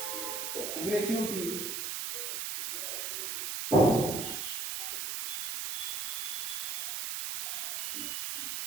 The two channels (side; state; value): right; noise; hiss, 1 dB below the sound